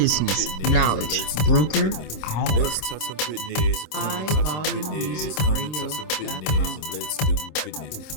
Knowledge Broker Hour.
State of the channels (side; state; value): right; late; 26 ms